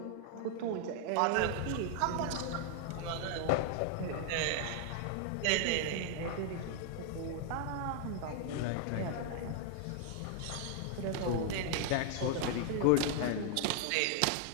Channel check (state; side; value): different; both; correlation 0.00